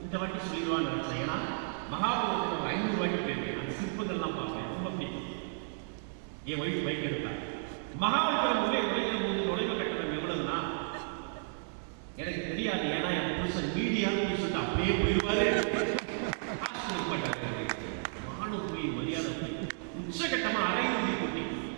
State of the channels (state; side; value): silent; left; digital silence